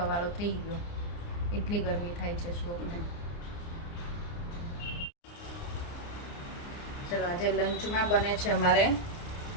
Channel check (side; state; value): right; late; 29 ms